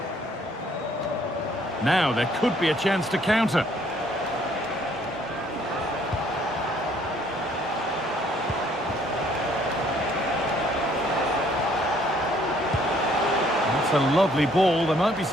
Now there could be a chance to counter. That's a lovely ball. There might be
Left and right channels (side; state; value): both; normal; correlation 0.63